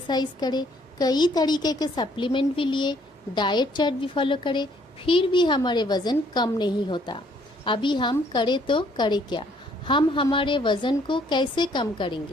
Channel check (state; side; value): normal; both; correlation 0.64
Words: करें, कई तरीके के सप्लीमेंट भी लिए, डाइट चार्ट भी फॉलो करें, फिर भी हमारे वज़न कम नहीं होता। अभी हम करें तो करें क्या? हम हमारे वज़न को कैसे कम